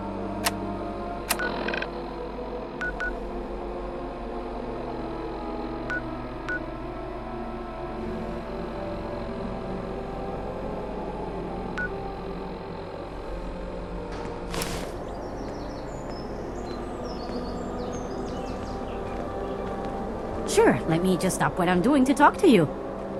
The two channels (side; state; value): both; identical; correlation 1.00